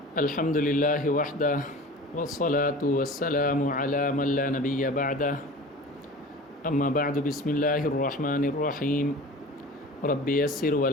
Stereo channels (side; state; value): both; normal; correlation 0.38